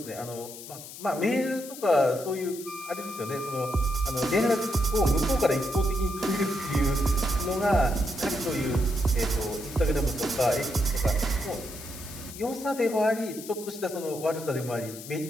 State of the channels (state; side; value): noise; left; hiss, 13 dB below the sound